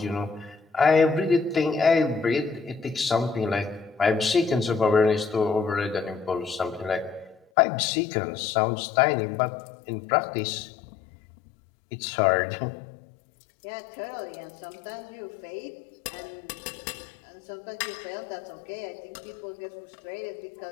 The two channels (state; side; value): drops out; right; at 7.5 s